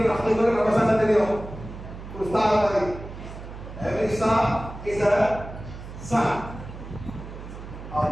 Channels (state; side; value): noise; right; hum, 12 dB below the sound